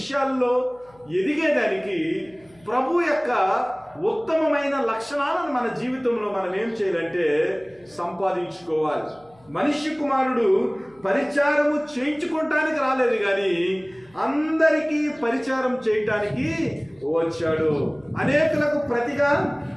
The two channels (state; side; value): noise; left; hum, 30 dB below the sound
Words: ఎదిగేదానికి ప్రభు యొక్క ఉత్తమమైన లక్షణాలను మన జీవితంలో మనం ఏం చేయాలంటే సంపాదించుకోవాలి. మనిషి కుమారుడు పరిచారము చేయించుకోవటానికి రాలేదు, కానీ అందరికీ పరిచారం చేయటానికి వచ్చాడు. అనేకులకు ప్రతిగా